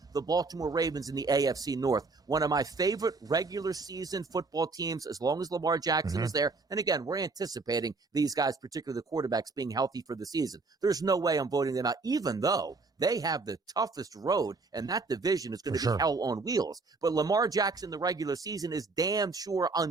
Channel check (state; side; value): quieter; left; 3.9 dB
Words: The Baltimore Ravens in the AFC North, one of my favorite regular season football teams as long as Lamar Jackson is there. And again, we're anticipating these guys, particularly the quarterbacks, being healthy for the season. There's no way I'm voting them out, even though they have the toughest road, and that division is going to be hell on wheels. But Lamar Jackson, the regular season, is damn sure